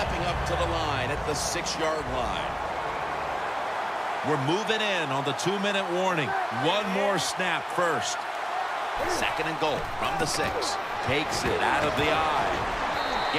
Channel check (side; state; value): both; identical; correlation 1.00